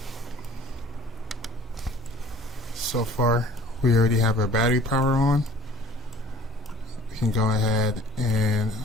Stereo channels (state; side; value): normal; both; correlation 0.51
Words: So far, we already have our battery power on. We can go ahead and...